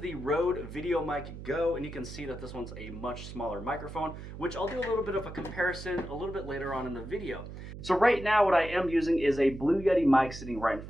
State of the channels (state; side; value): noise; right; hum, 11 dB below the sound